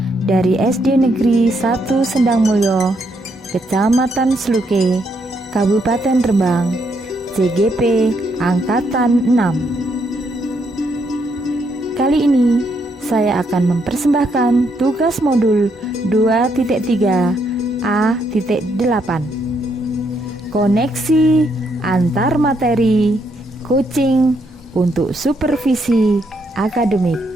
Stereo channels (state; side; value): normal; both; correlation 0.75